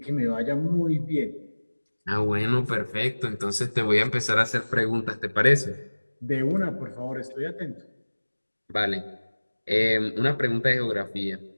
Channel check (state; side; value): inverted; both; correlation -1.00